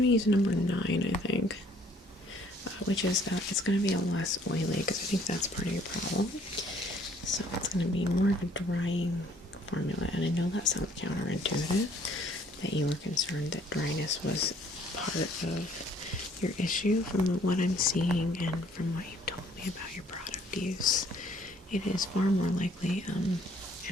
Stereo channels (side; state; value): both; normal; correlation 0.61